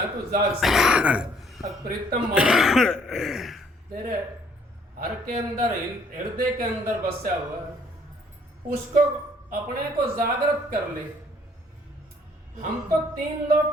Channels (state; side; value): normal; both; correlation 0.62